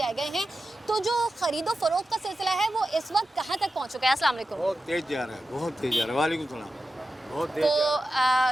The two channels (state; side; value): normal; both; correlation 0.92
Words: गए हैं, तो जो खरीदो फरोख्त का सिलसिला है वो इस वक्त कहाँ तक पहुँच चुका है? अस्सलाम वालेकुम। बहुत तेज जा रहा है, बहुत तेज जा रहा है। वालेकुम सलाम। बहुत तेज